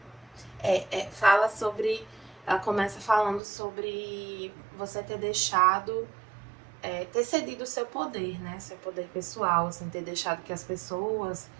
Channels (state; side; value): drops out; left; at 3.4 s